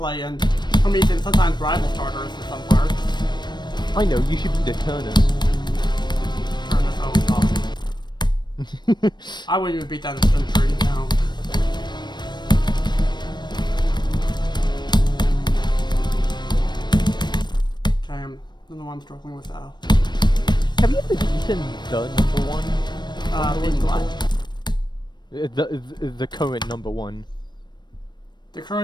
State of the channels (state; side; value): late; right; 0.21 ms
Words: in Promethean sometimes rivals Tartarus in some parts. I know, you should be the Turnus. Turnus, oh god. I wouldn't even beat that in Century, no. Okay, I don't know why I'm struggling with that. Have you ever beaten the number one? Beaten what? The current number one. The